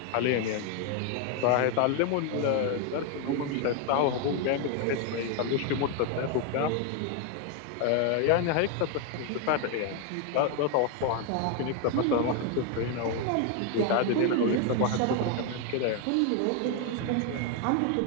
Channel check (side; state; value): both; different; correlation 0.01